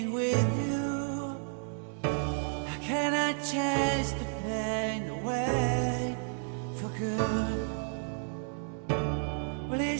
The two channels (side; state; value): left; silent; 57 dB below the other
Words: with you? How can I chase the pain away for good? Well,